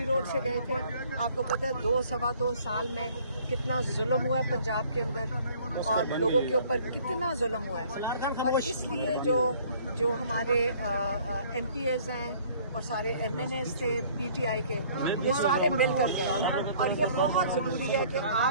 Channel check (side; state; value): both; inverted; correlation -0.56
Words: روڈ سے گئے تھے. آپ کو پتہ ہے 2 سال میں کتنا ظلم ہوا ہے پنجاب کے اندر اور لوگوں کے اوپر کتنا ظلم ہوا ہے. اور اس لیے جو ہمارے ایم پی ایز ہیں اور سارے ایم این ایز تھے پی ٹی آئی کے, یہ سارے مل کر گئے. اور یہ بہت ضروری ہے کہ